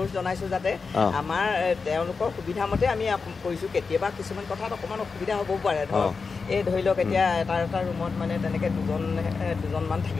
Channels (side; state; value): right; quieter; 4.8 dB